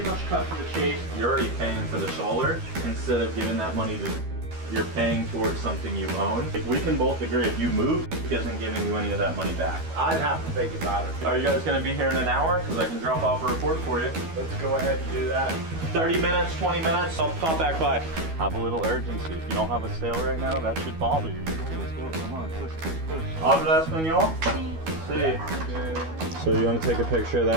much cut to the chase. You're already paying for the solar instead of giving that money to you're paying towards something you own. We can both agree if you move, it isn't giving you any of that money back. I'd have to think about it. Are you guys going to be here in an hour? Because I can drop off a report for you. Let's go ahead and do that. 30 minutes, 20 minutes, I'll pop back by. Have a little urgency. If you don't have a sale right now, that should bother you. Let's go, come on, push, push, push. Habla español? Sí. So you want to take a picture of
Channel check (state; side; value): late; left; 12 ms